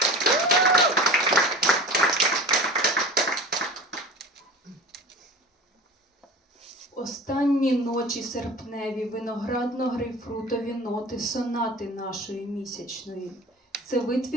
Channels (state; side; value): normal; both; correlation 0.37